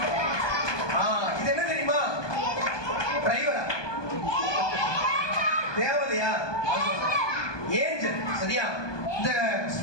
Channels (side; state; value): right; late; 1.2 ms